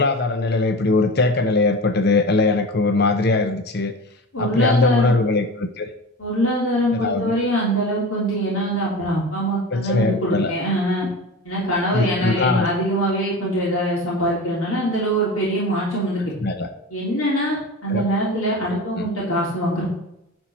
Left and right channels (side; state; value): both; normal; correlation 0.31